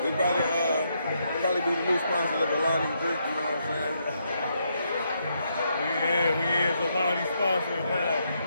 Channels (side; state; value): both; inverted; correlation -0.78